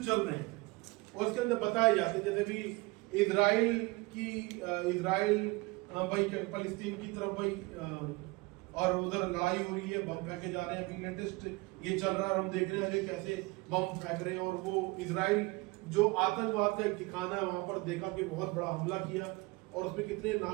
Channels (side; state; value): left; quieter; 24.3 dB